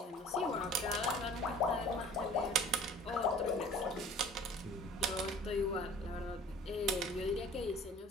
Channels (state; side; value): normal; both; correlation 0.48